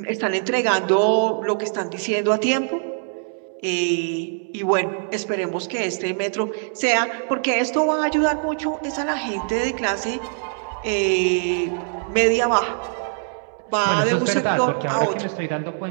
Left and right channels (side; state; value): left; silent; 64 dB below the other